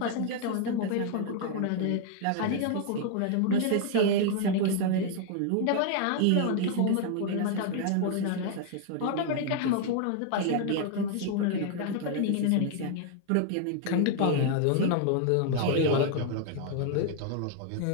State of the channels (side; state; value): both; different; correlation 0.00